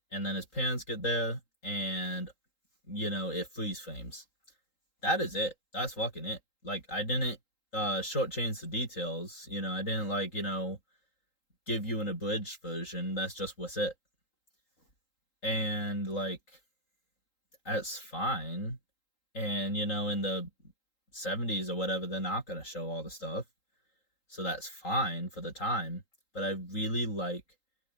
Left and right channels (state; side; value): late; right; 3.8 ms